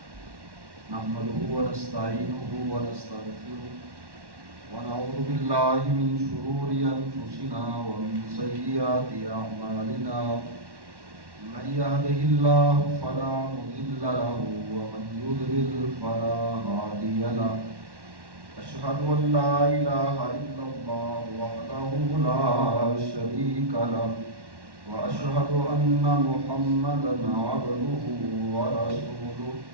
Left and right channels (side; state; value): left; late; 1.1 ms